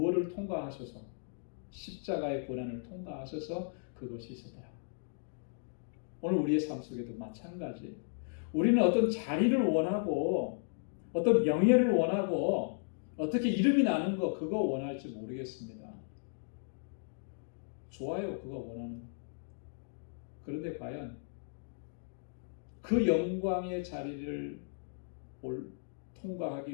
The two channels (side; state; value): right; silent; digital silence